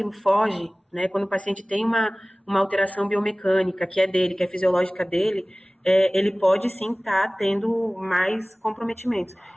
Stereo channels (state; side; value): normal; both; correlation 0.98